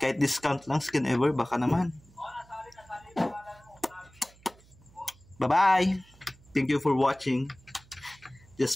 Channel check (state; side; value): noise; right; hum, 27 dB below the sound